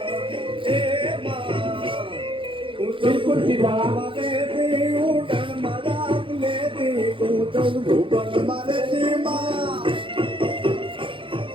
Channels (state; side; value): late; left; 0.25 ms